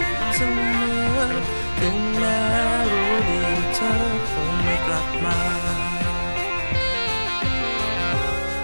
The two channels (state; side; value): inverted; both; correlation -1.00